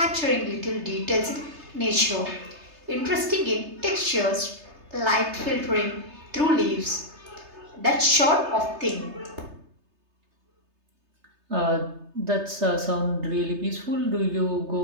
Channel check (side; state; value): left; late; 3.3 ms